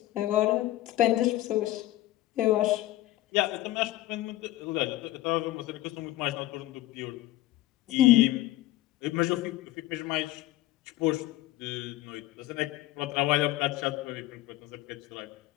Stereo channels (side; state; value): right; quieter; 16.2 dB